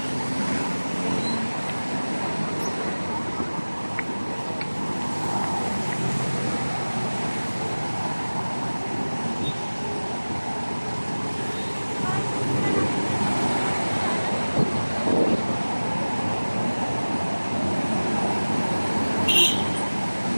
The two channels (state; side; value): inverted; both; correlation -1.00